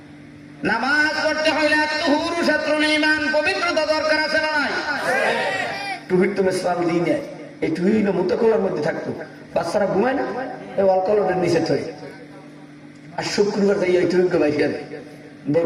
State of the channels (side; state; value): both; identical; correlation 1.00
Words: নামাজ পড়তে হইলে আত-তুহুরু শাত্রুল ঈমান, পবিত্রতা দরকার আছে না নাই? টুহির তো ইসলাম দিই নেয়, এই টুহিল মুতাকলার মধ্যে থাকতো, বাচ্চারা ঘুমায় না, এই অলকলের নিচে থই। আর শুক্রবার যাই এই টুহিকে বাইকে